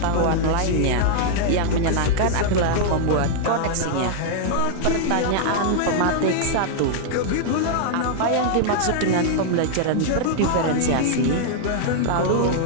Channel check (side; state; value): both; different; correlation -0.01